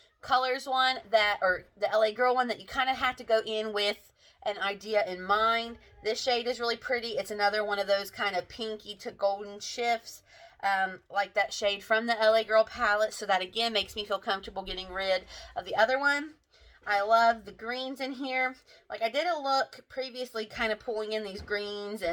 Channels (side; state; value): both; identical; correlation 1.00